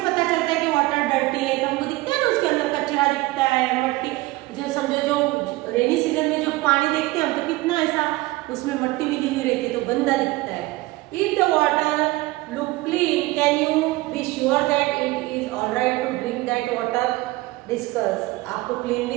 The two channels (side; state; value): left; quieter; 20.2 dB